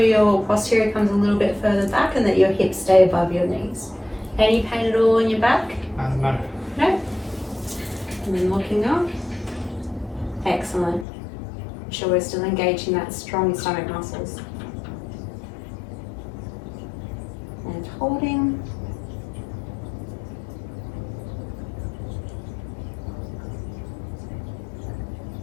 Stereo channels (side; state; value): right; drops out; at 11.1 s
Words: posterior comes a little bit further back and that your hips stay above your knees. Any pain at all in your back? No. No? And then looking up. Excellent. Make sure we're still engaging that strong stomach muscles. And holding.